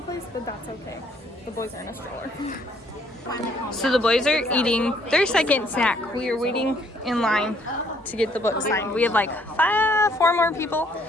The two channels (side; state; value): both; normal; correlation 0.65